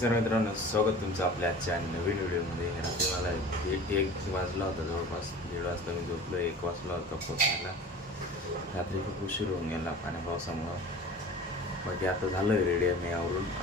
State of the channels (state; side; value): normal; both; correlation 0.39